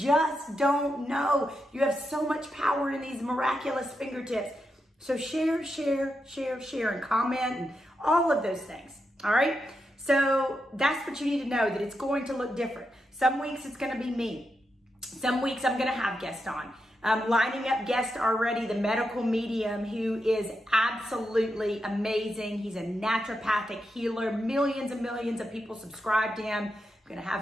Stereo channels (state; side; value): normal; both; correlation 0.85